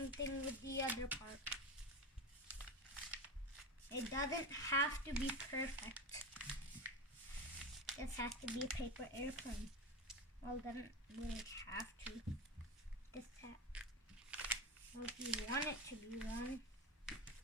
thing with the other part. It doesn't have to be perfect. This has to be a paper airplane. Well, it doesn't really have to. Well, if you want it to be one.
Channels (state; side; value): normal; both; correlation 0.21